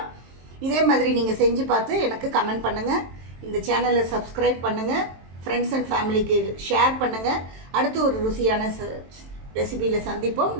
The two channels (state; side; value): late; left; 23 ms